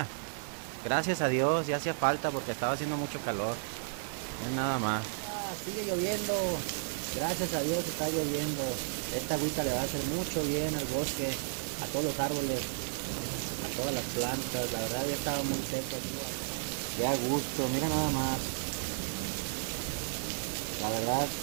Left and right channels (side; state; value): left; silent; digital silence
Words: Gracias a Dios, ya hacía falta porque estaba haciendo mucho calor. Es nada más. Sigue lloviendo, gracias a Dios está lloviendo. Esta agüita le va a hacer mucho bien al bosque, a todos los árboles, a todas las plantas. La verdad ya estaba muy seco aquí. Qué a gusto, mira nada más. La verdad,